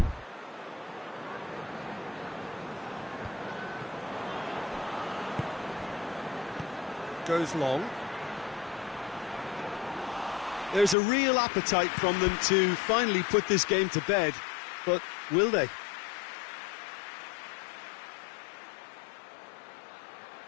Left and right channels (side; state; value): right; drops out; at 11.0 s